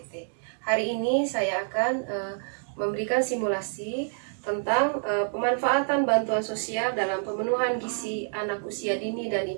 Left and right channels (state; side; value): silent; left; digital silence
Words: Hari ini saya akan memberikan simulasi tentang pemanfaatan bantuan sosial dalam pemenuhan gizi anak usia dini dan